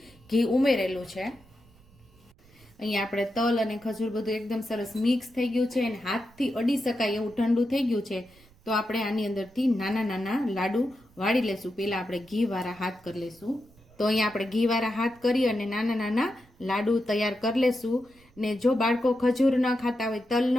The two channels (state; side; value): noise; right; rumble, 28 dB below the sound